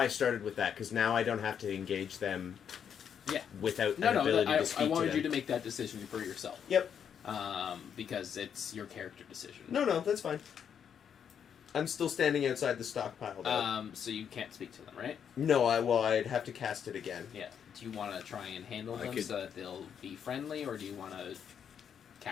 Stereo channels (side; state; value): right; quieter; 8.0 dB